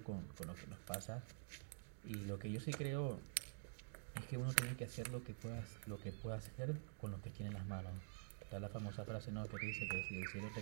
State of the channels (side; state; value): left; silent; digital silence